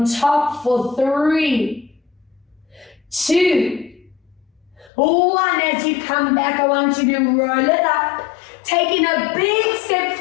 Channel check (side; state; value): right; drops out; at 4.9 s